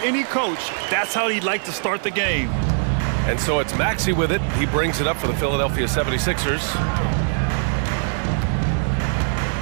coach, that's how he'd like to start the game. And so it's Maxey with it. He brings it up for the Philadelphia 76ers.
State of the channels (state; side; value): silent; left; digital silence